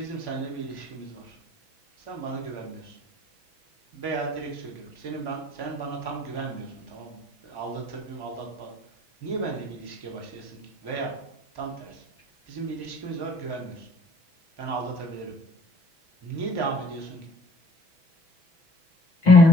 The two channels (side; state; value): right; late; 6.1 ms